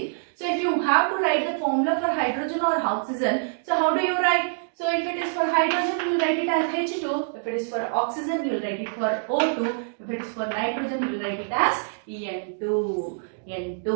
So if you have to write the formula for hydrogen or oxygen, so how do you write? So if it is for hydrogen, you will write it as H2. If it is for oxygen, you will write it for O2. If it is for nitrogen, you will write it as N2.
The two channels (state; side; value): silent; left; digital silence